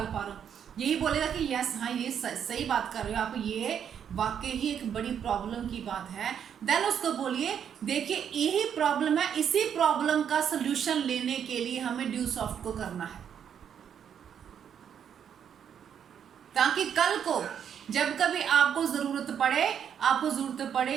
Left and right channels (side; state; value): left; quieter; 8.4 dB